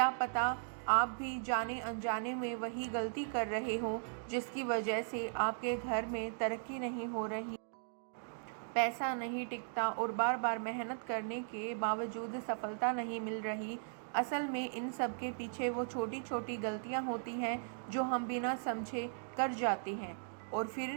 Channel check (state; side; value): silent; left; digital silence